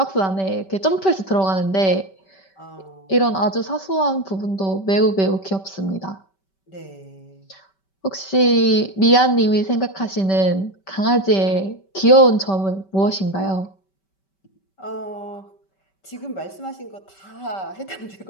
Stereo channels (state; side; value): late; right; 5.2 ms